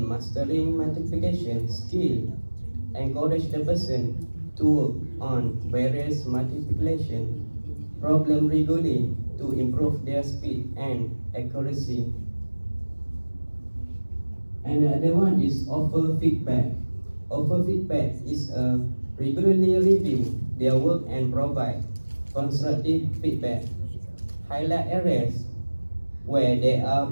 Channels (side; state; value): both; inverted; correlation -1.00